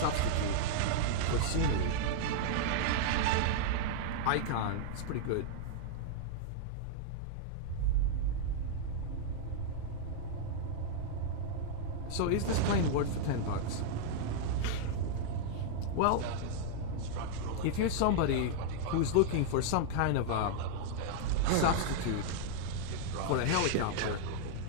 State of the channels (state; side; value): different; both; correlation -0.01